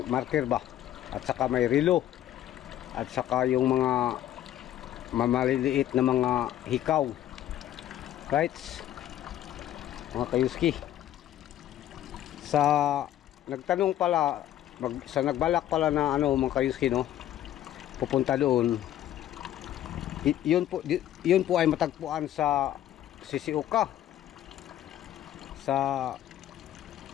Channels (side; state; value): right; quieter; 12.3 dB